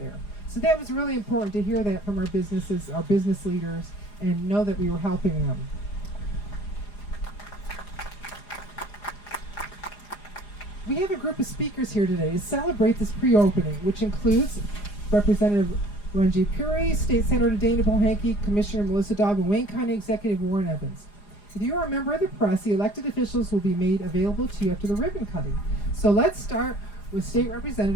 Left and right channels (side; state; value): right; late; 4.9 ms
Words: So that was really important to hear that from our businesses, our business leaders, and know that we were helping them. We have a group of speakers here today to celebrate this pre-opening, which includes Representative Ranjit Puri, State Senator Dana Polhanke, Commissioner Melissa Daw, and Wayne County Executive Warren Evans. If you are a member of the press, the elected officials will be made available to you after the ribbon cutting. So let's start with State